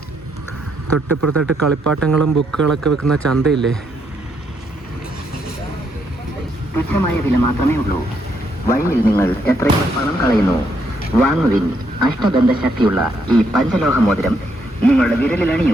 തൊട്ടിപ്പുറത്തായിട്ട് കളിപ്പാട്ടങ്ങളും ബുക്കുകളൊക്കെ വെക്കുന്ന ചന്തയില്ലേ. തുച്ഛമായ വില മാത്രമേ ഉള്ളൂ. വഴിയിൽ നിങ്ങൾ എത്രയോ പണം കളയുന്നു. വാങ്ങുവിൻ അഷ്ടബന്ധ ശക്തിയുള്ള ഈ പഞ്ചലോഹ മോതിരം നിങ്ങളുടെ വിരലിൽ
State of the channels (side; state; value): both; normal; correlation 0.74